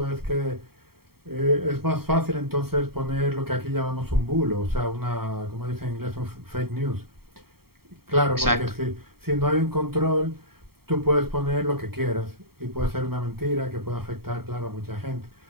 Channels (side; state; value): left; late; 0.95 ms